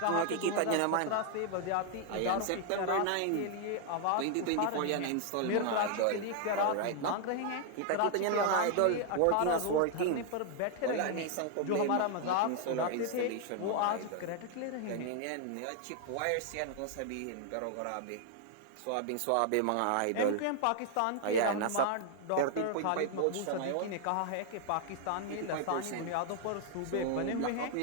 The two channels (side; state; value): both; different; correlation 0.00